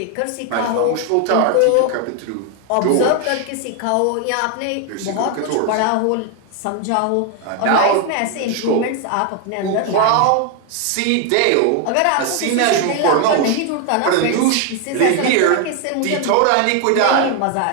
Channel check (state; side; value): different; both; correlation 0.01